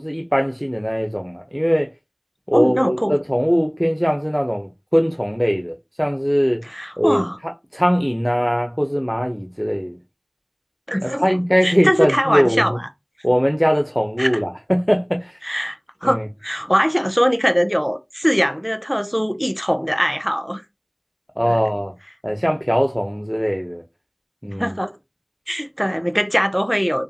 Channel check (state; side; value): identical; both; correlation 1.00